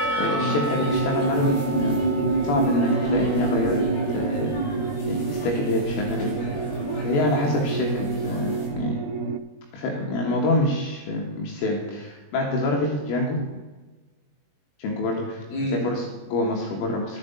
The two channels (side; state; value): right; late; 21 ms